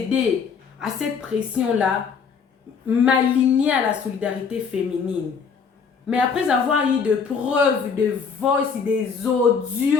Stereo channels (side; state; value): right; quieter; 5.9 dB